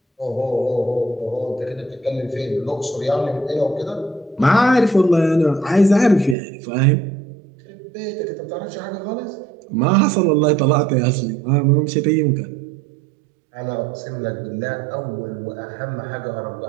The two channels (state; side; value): drops out; left; at 6.4 s